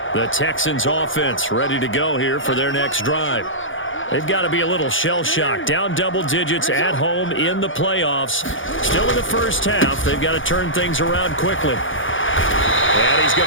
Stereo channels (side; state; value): right; late; 0.57 ms